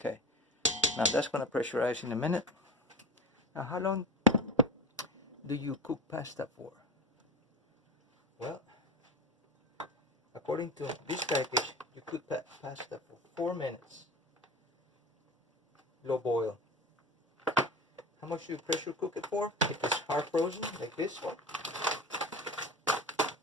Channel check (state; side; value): normal; both; correlation 0.31